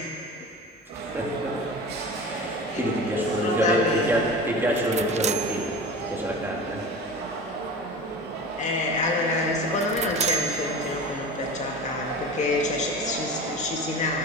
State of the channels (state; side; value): normal; both; correlation 0.34